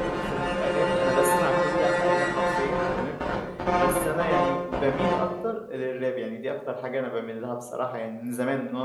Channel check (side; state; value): both; identical; correlation 1.00